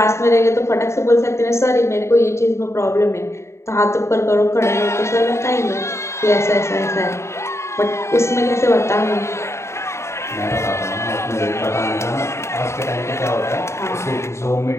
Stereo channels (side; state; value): right; late; 0.13 ms